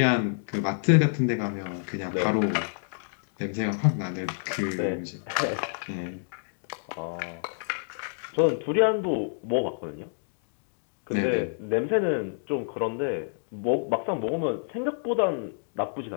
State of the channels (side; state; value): right; silent; digital silence